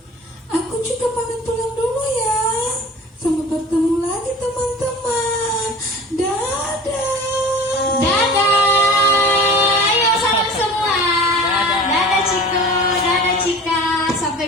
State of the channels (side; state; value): both; normal; correlation 0.40